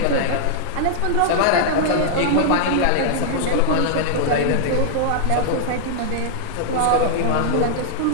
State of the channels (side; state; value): both; different; correlation -0.01